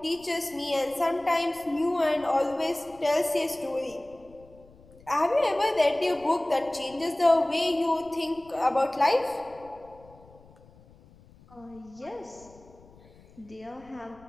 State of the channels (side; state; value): left; noise; rumble, 25 dB below the sound